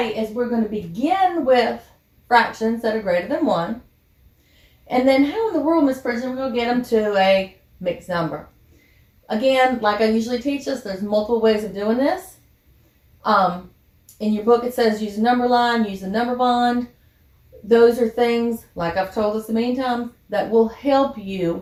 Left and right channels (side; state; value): both; identical; correlation 1.00